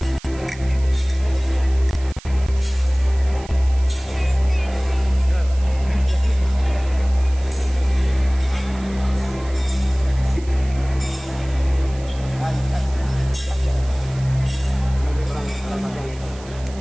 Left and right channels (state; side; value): noise; right; hiss, 21 dB below the sound